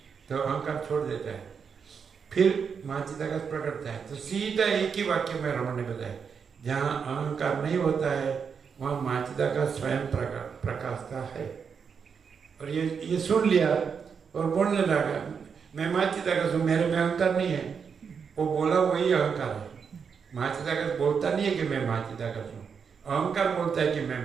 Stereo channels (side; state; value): left; quieter; 6.4 dB